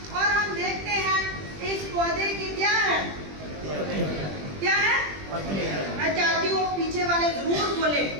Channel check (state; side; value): late; left; 20 ms